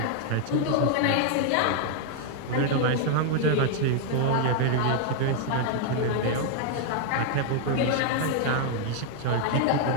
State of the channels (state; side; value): different; both; correlation 0.00